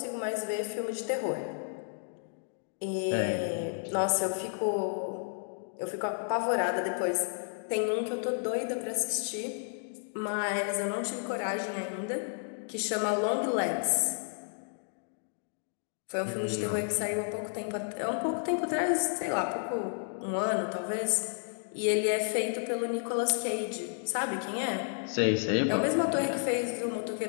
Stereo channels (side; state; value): right; silent; digital silence